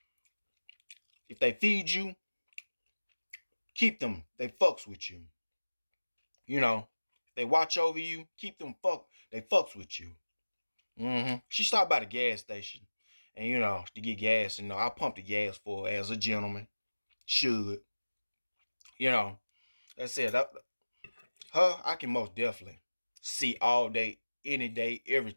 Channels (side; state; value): both; inverted; correlation -1.00